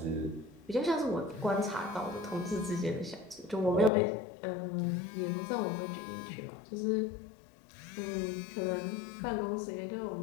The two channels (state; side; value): drops out; right; at 3.9 s